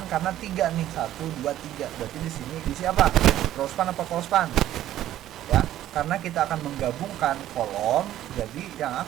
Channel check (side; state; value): left; quieter; 12.9 dB